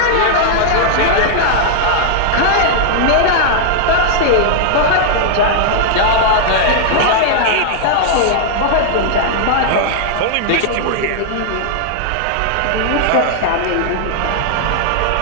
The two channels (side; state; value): both; different; correlation -0.01